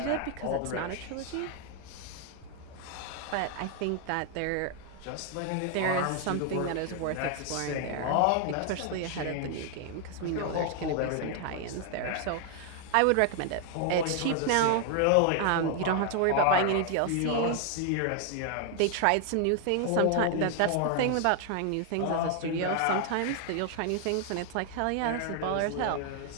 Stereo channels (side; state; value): both; different; correlation 0.00